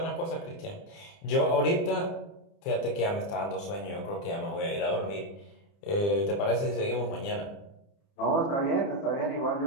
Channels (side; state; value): right; late; 30 ms